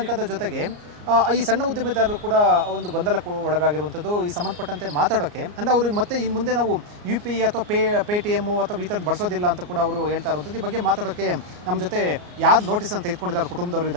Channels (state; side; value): late; left; 34 ms